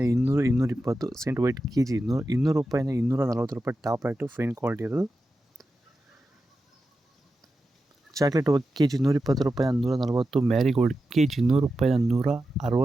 200, 220. ಸೆಂಟ್ ವೈಟ್ KG 200 ರೂಪಾಯಿಂದ 240 ರೂಪಾಯಿ ಟಾಪ್ ರೇಟು ಫೈನ್ ಕ್ವಾಲಿಟಿ ಇರೋದು. ಚಾಕ್ಲೇಟ್ KG 120 ರೂಪಾಯಿಂದ 140. ಮ್ಯಾರಿಗೋಲ್ಡ್ KG 100 ರೂಪಾಯಿಂದ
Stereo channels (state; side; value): normal; both; correlation 0.91